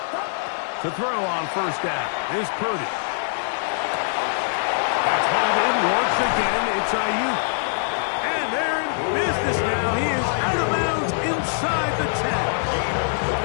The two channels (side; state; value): right; silent; digital silence